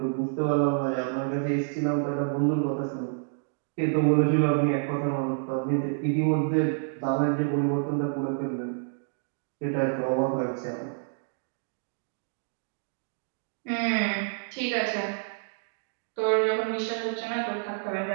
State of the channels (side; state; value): left; silent; digital silence